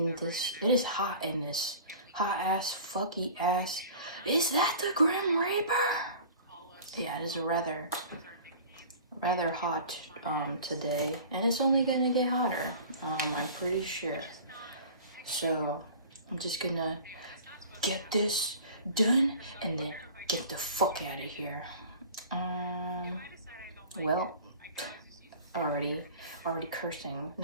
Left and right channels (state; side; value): inverted; both; correlation -0.42